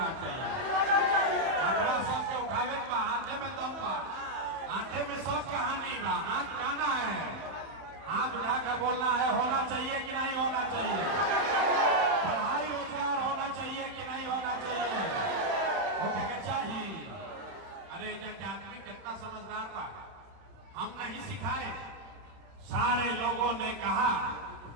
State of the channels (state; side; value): late; left; 31 ms